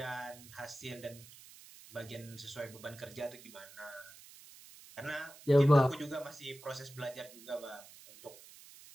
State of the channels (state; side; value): noise; right; hiss, 19 dB below the sound